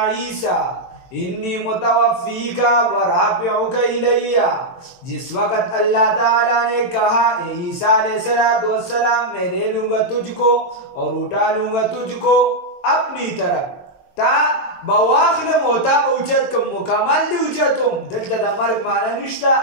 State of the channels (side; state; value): right; late; 22 ms